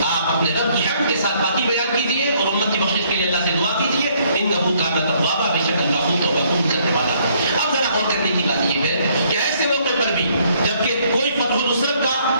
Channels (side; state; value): both; inverted; correlation -0.66